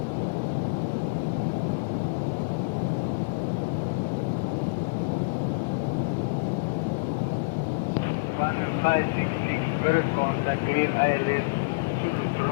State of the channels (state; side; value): quieter; right; 32.5 dB